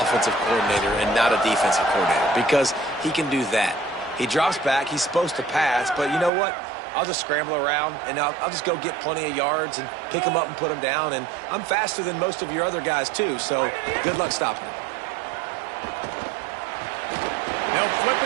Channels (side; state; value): left; drops out; at 6.3 s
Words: coordinator and not a defensive coordinator, because he can do that. He drops back. He's supposed to pass, but you know what? I'll just scramble around, and I'll just go get plenty of yards and pick them up and put them down, and I'm faster than most of your other guys, too, so good luck stopping him. They'll flip